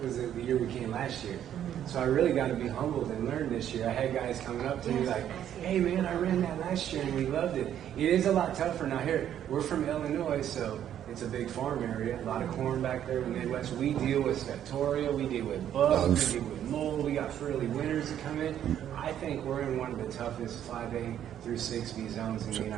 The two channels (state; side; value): quieter; left; 10.4 dB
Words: was the year we came last year. So I really got to be humbled and learn this year. I had guys coming up to me like, hey man, I ran that last year and we loved it. It is a lot tougher. Now here, we're from Illinois, so it's a big farm area, a lot of corn back there in the Midwest. We deal with Septoria, we deal with bugs, we deal with mold, we got early winters that come in. I think we're in one of the toughest 5A through 6B zones in the